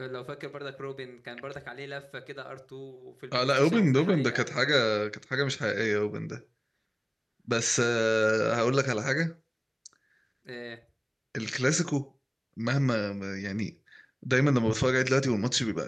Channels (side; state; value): both; identical; correlation 1.00